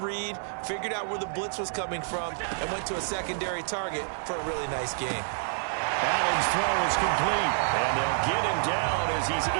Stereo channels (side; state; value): left; silent; 59 dB below the other